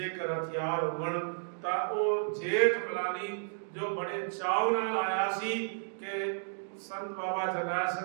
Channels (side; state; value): left; silent; digital silence